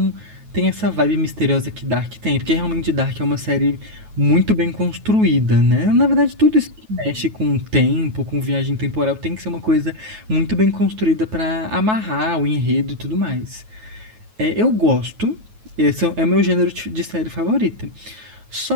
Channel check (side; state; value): left; late; 9.3 ms